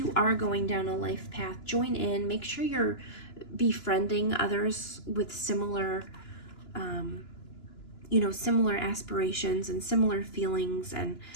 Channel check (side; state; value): right; late; 2.9 ms